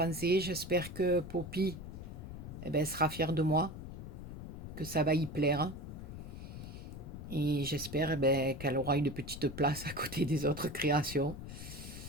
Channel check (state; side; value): noise; left; rumble, 10 dB below the sound